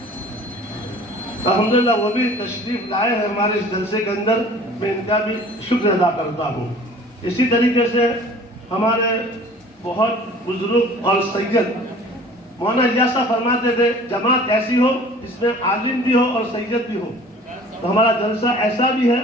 الحمدللہ وہ بھی تشریف لائے ہیں ہمارے اس جلسے کے اندر، میں ان کا بھی شکر ادا کرتا ہوں۔ اسی طریقے سے ہمارے بہت بزرگ اور سید مولانا ایاسا فرماتے تھے جماعت ایسی ہو جس میں عالم بھی ہو اور سید بھی ہو، تو ہمارا جلسہ ایسا بھی ہے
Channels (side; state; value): both; normal; correlation 0.47